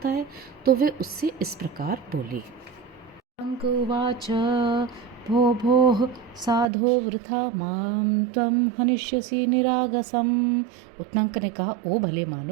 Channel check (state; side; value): drops out; left; at 6.7 s